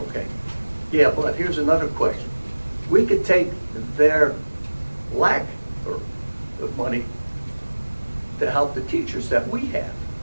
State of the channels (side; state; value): both; inverted; correlation -1.00